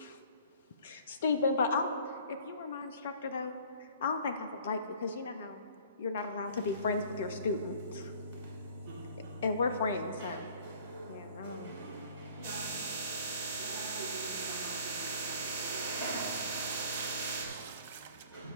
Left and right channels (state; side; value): inverted; both; correlation -0.51